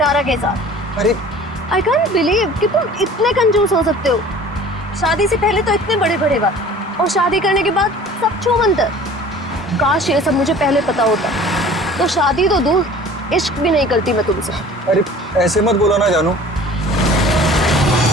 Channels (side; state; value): both; normal; correlation 0.46